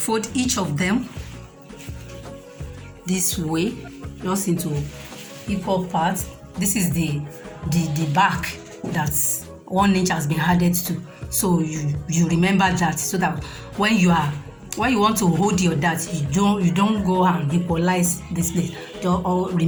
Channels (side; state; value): both; identical; correlation 1.00